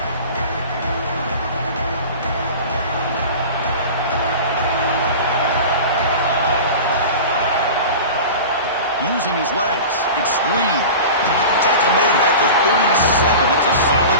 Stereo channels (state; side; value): inverted; both; correlation -0.34